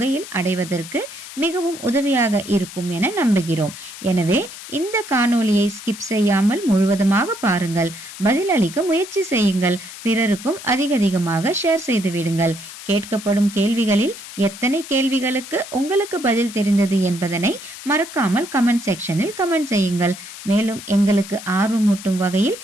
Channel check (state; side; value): noise; left; hiss, 13 dB below the sound